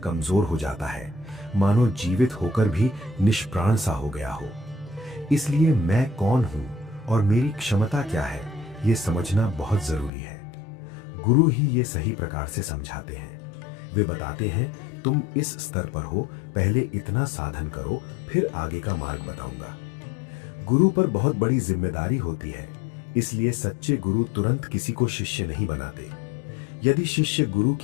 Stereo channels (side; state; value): right; drops out; at 10.1 s